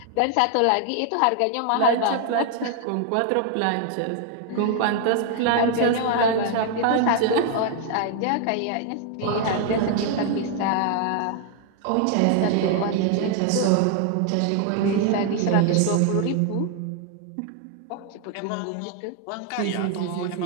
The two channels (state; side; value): different; both; correlation 0.00